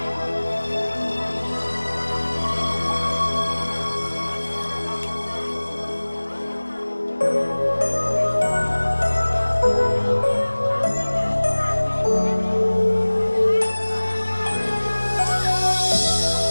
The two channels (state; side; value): inverted; both; correlation -1.00